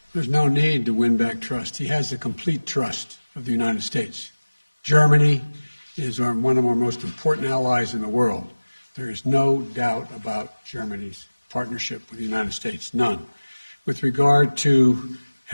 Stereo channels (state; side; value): inverted; both; correlation -1.00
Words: There's no need to win back trust. He has the complete trust of the United States. Germany is one of our most important allies in the world. There is no doubt about Germany's partnership with the United States, none. With regard to